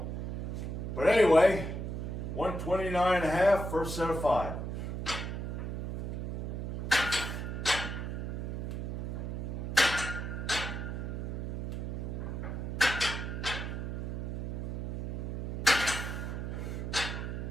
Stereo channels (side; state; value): right; noise; hum, 3 dB below the sound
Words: but anyway, 129.5, first set of 5.